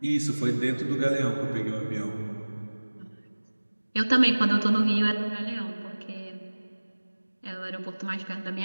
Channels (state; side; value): inverted; both; correlation -1.00